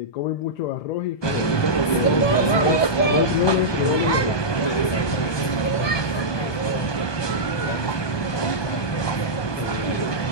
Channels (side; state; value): right; late; 1.2 ms